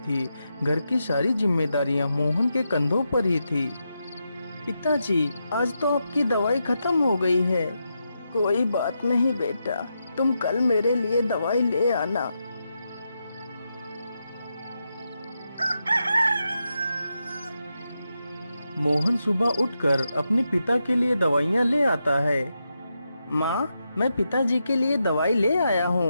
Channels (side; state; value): both; inverted; correlation -0.86